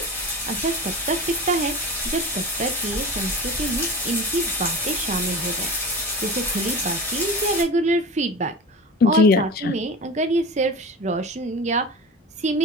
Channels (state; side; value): normal; both; correlation 0.32